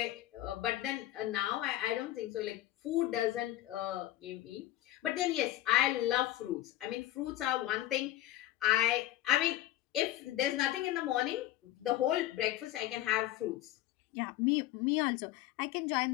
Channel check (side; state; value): right; quieter; 14.5 dB